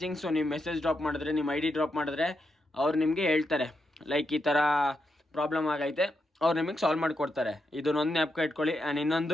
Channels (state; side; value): normal; both; correlation 0.83